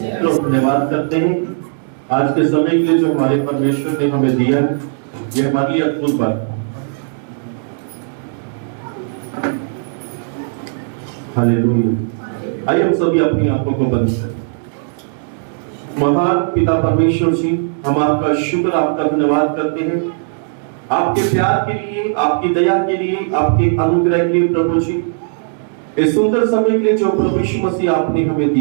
तो धन्यवाद करते हैं आज के समय के लिए जो हमारे परमेश्वर ने हमें दिया है। ये हमारे लिए अद्भुत बात है। हालेलुया। आइए हम सभी अपनी आंखों को बंद करें। महान पिता परमेश्वर जी, हम आपका शुक्र, आपका धन्यवाद करते हैं आपके प्यार के लिए, आपकी दया के लिए, आपके अनुग्रह के लिए प्रभु जी। इस सुंदर समय के लिए जो प्रभु यीशु मसीह आपने हमें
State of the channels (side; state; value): left; silent; digital silence